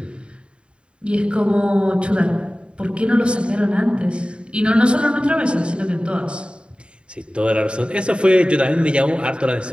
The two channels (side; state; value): left; late; 0.055 ms